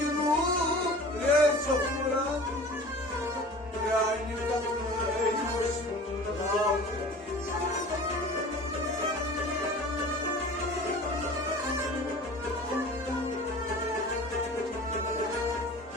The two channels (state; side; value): normal; both; correlation 0.41